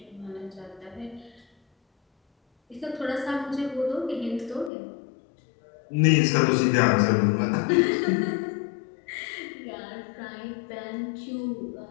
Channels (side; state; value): right; drops out; at 4.7 s